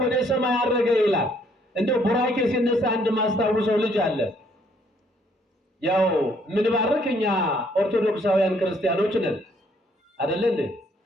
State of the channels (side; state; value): both; normal; correlation 0.66